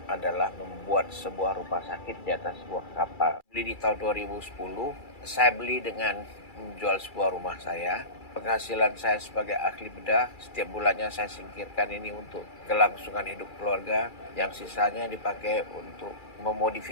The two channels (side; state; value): right; late; 2.3 ms